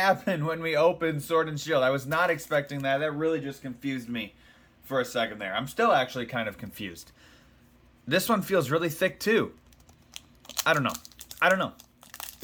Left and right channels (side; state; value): both; identical; correlation 1.00